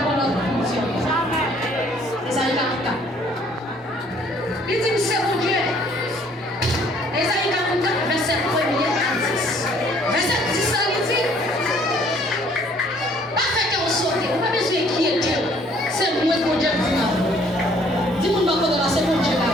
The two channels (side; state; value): both; normal; correlation 0.60